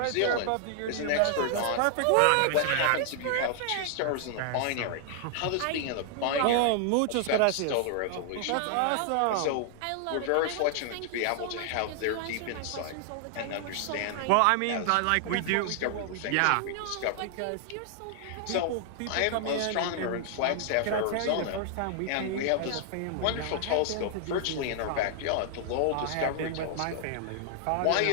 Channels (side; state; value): both; different; correlation 0.00